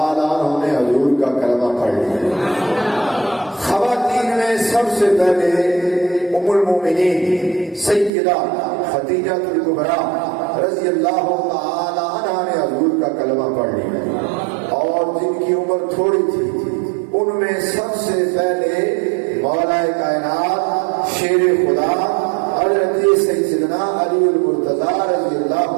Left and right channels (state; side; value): drops out; left; at 8.1 s